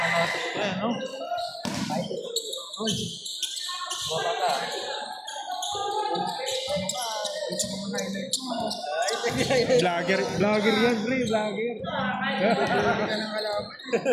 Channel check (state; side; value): identical; both; correlation 1.00